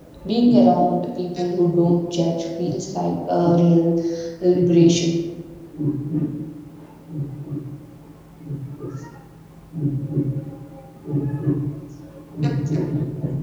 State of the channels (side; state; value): both; identical; correlation 1.00